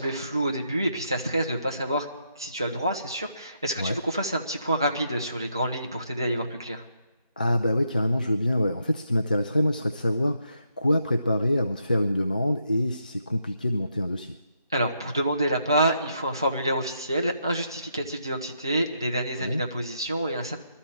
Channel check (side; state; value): both; inverted; correlation -0.78